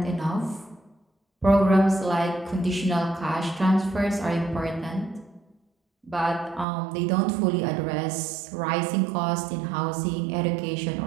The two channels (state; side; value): drops out; left; at 6.7 s